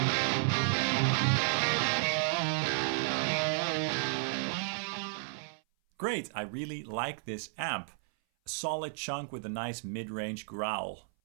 Great, I really like this amp. A solid chunk with a nice mid-range growl.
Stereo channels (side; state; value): left; silent; 56 dB below the other